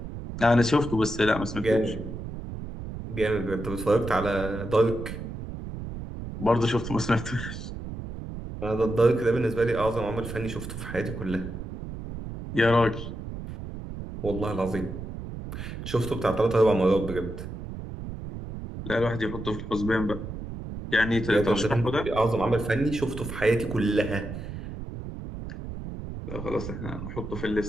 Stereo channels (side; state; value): right; noise; rumble, 8 dB below the sound